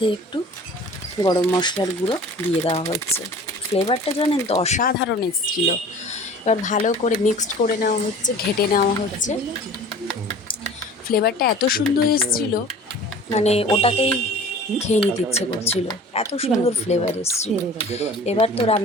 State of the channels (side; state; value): both; normal; correlation 0.44